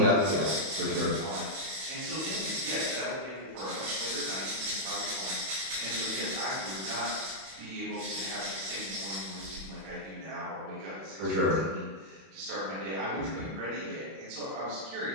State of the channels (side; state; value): left; late; 32 ms